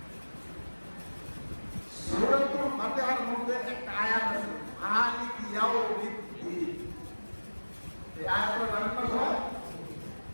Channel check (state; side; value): inverted; both; correlation -1.00